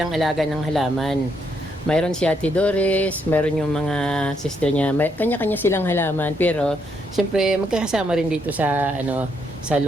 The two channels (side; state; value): both; normal; correlation 0.75